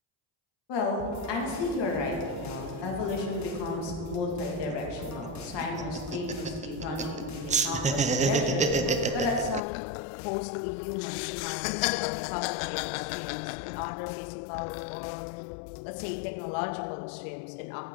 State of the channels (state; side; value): drops out; right; at 9.6 s